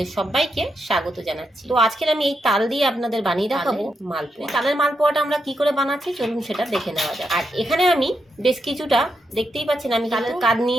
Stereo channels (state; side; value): normal; both; correlation 0.83